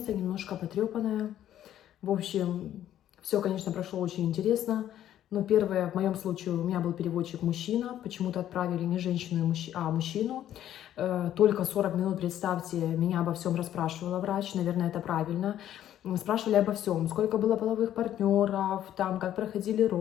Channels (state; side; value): quieter; right; 11.6 dB